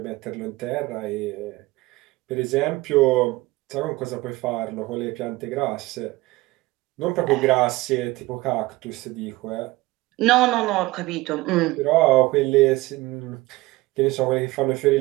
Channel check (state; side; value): quieter; left; 20.2 dB